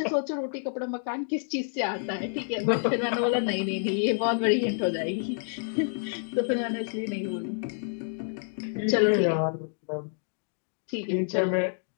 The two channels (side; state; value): right; silent; digital silence